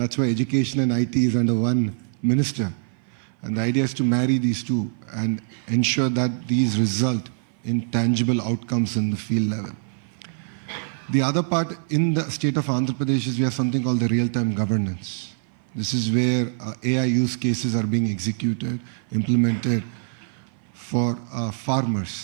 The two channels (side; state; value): left; silent; 56 dB below the other